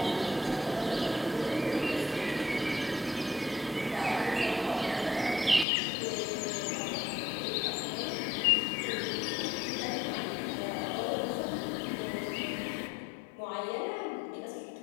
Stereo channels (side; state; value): right; drops out; at 5.7 s